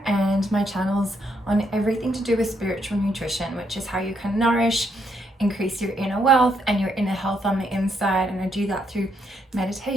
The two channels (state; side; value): normal; both; correlation 0.75